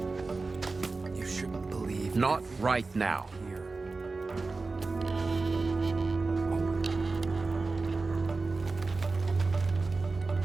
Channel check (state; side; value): quieter; left; 3.8 dB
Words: You shouldn't believe Not right now. here.